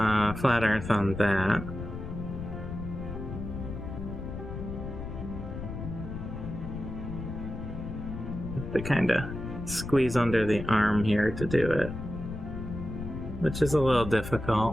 flat earth on that. Have to kind of squeeze under the arm here to do it, which is a little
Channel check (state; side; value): noise; left; rumble, 7 dB below the sound